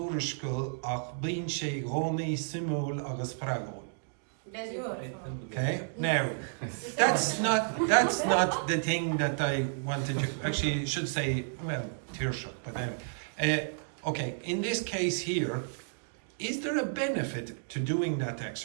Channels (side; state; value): left; silent; digital silence